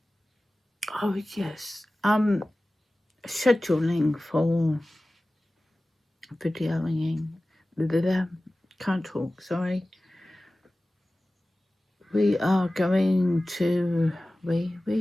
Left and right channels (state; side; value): normal; both; correlation 0.97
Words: Oh, yes. Scheduling for videoing. Can't talk, sorry. We are going to...